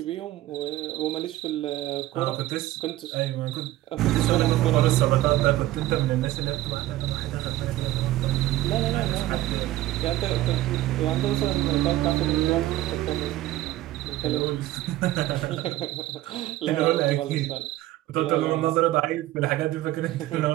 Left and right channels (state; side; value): quieter; left; 15.6 dB